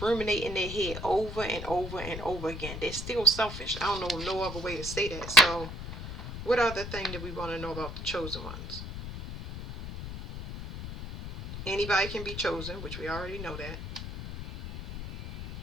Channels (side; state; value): left; noise; rumble, 8 dB below the sound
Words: ruminate in their head over and over and over again. They're still selfish. I don't know no other way to say that. So what other thing do we want to know about the chosen ones? Anybody can be chosen, which we already know that.